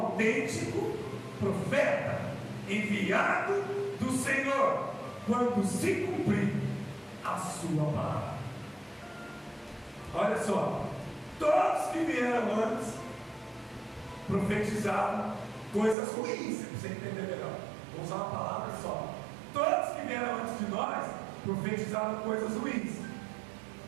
profeta, enviado do Senhor, quando se cumprir a sua palavra. Olha só, todos que vieram antes profetizaram coisas ruins, para você entender melhor. Vou usar uma palavra só. Todos que vieram antes de nós profetizaram coisas ruins.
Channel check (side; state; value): left; drops out; at 16.0 s